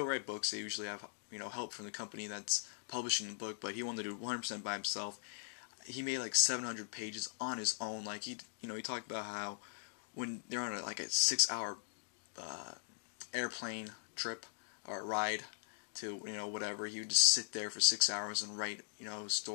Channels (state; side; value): silent; right; digital silence